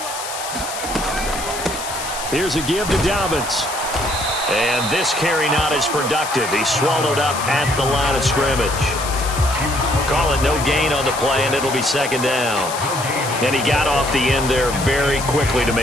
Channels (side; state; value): left; noise; hiss, 8 dB below the sound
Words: Here's a give to Dobbins. And this carry not as productive. He's swallowed up at the line of scrimmage. Call it no gain on the play, and it'll be 2nd down. And he got off the end there very quickly to